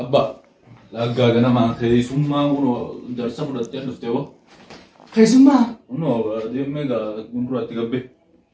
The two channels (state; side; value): identical; both; correlation 1.00